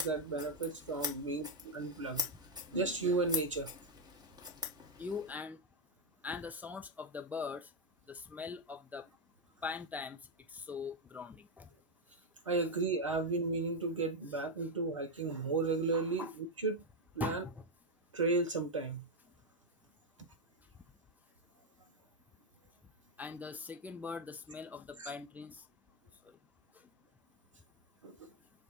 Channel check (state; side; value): normal; both; correlation 0.03